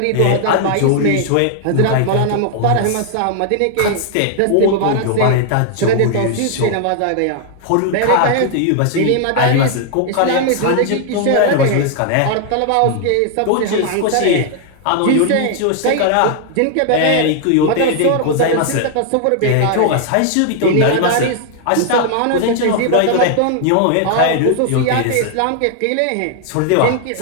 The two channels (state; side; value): different; both; correlation 0.00